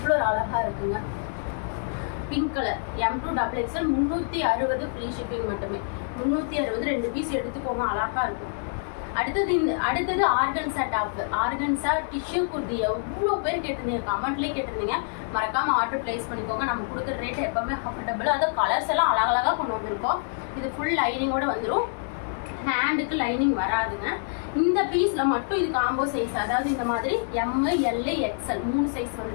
ஒரு அழகாக இருக்குங்க. Pink colour M2 XXL 360 free shipping மட்டுமே. 360 2 பீஸ் எடுத்துக்கோங்க, அழகாக இருக்கும். அடுத்தது organza top. Organza tissue kurti எவ்வளோ பேர் கேட்டிருந்தீங்க, கமெண்ட்லேயே கேட்டிருந்தீங்க. மறக்காம ஆர்டர் பிளேஸ் பண்ணிக்கோங்க. நம்ம கொடுக்குற ரேட் எப்பவுமே அஃபோர்டபுள். அது கலர்ஸ் எல்லாம் அழகழகாக கொண்டு வந்திருக்கோம். இது ஃபுல் லைனிங்கோட வந்துடும், ஹேண்டுக்கு லைனிங் வராதுங்க. இந்த பீஸ்ல மட்டும் இது காம்போ சைஸ், அதாவது இந்த மாதிரி ML XL 3 சைஸ்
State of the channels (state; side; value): silent; right; digital silence